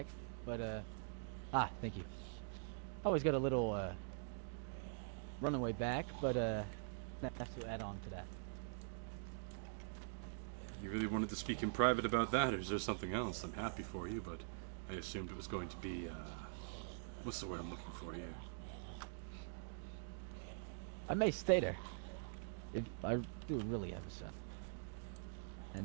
But, thank you. I always got a little, runaway bag, but, have to add on to that. You really wanted to speak in private about that, or is there something else? I'm happy for you, but I assumed it was going to be, what's the word I'm looking for here? I may stay there. If I do really have a son.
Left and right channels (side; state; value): left; silent; digital silence